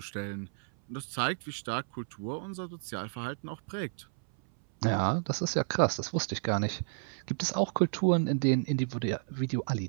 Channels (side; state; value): left; silent; 57 dB below the other